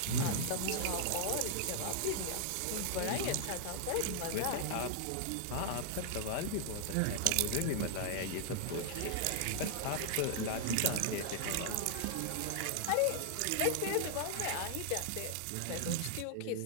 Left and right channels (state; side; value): different; both; correlation -0.01